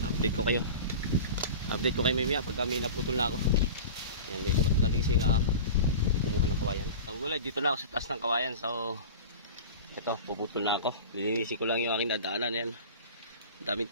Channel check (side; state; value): both; inverted; correlation -0.34